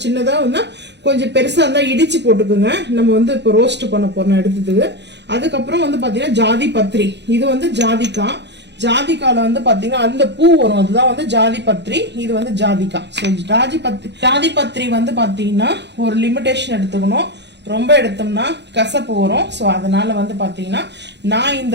சின்னதா வந்து கொஞ்சம் பெருசா இருந்தா இடிச்சு போட்டுக்குங்க. நம்ம வந்து இப்போ ரோஸ்ட் பண்ண போறோம் எடுத்ததுக்கு. அதுக்கப்புறம் வந்து பாத்தீங்கன்னா ஜாதி பத்திரி. இது வந்து ஜாதிக்கால வந்து பாத்தீங்கன்னா அந்த பூ வரும், அதுதான் வந்து ஜாதி பத்திரி. இது வந்து ஜாதிக்காய். ஸோ ஜாதி பத்திரி வந்து பாத்தீங்கன்னா ஒரு லிமிடேஷன் எடுத்துக்கணும். ரொம்ப எடுத்தோம்னா கசப்பு வரும். ஸோ அதனால வந்து பாத்தீங்கன்னா நான்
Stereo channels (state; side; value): late; left; 0.50 ms